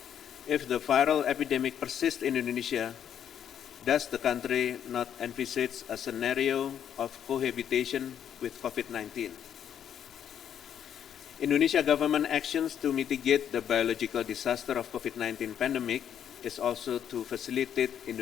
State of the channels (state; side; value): quieter; right; 9.2 dB